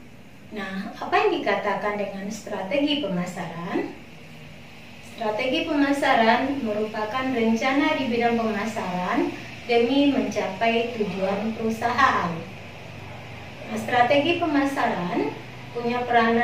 Nah, apa yang dikatakan dengan strategi pemasaran? Strategi pemasaran merupakan rencana di bidang pemasaran demi mencapai tujuan perusahaan. Nah, strategi pemasaran punya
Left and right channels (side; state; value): both; identical; correlation 1.00